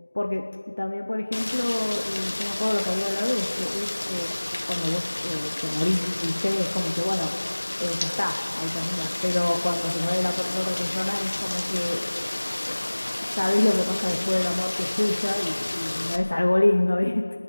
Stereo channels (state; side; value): inverted; both; correlation -1.00